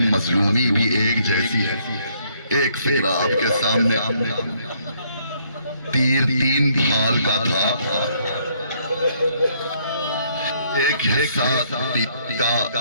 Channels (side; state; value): both; inverted; correlation -0.68